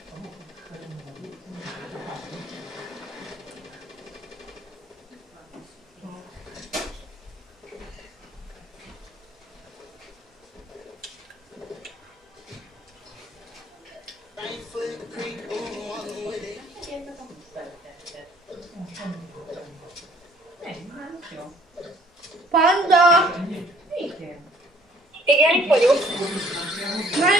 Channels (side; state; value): both; normal; correlation 0.59